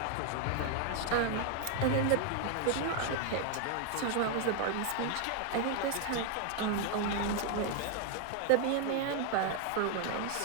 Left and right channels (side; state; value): both; different; correlation 0.00